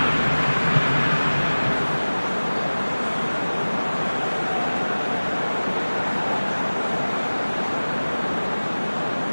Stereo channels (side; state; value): both; inverted; correlation -1.00